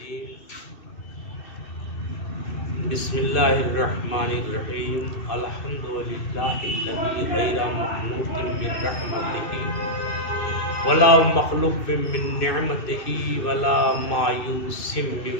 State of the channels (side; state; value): right; late; 2.7 ms